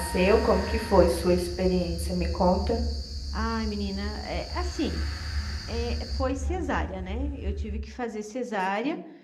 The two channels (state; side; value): identical; both; correlation 1.00